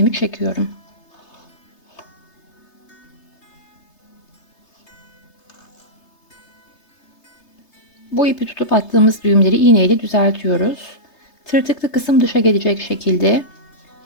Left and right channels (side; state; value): right; late; 3.3 ms